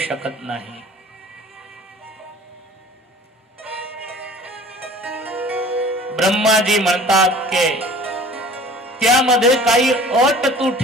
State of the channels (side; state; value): both; normal; correlation 0.46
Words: नाही. ब्रह्माजी म्हणतात की त्यामध्ये काही अट तू